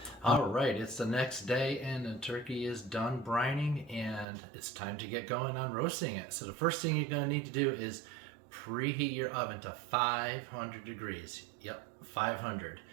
All right, it's the next day, and the turkey is done brining, and it's time to get going on roasting it. So the first thing you're going to need to do is preheat your oven to 500 degrees. Yep, 500,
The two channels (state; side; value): drops out; left; at 4.2 s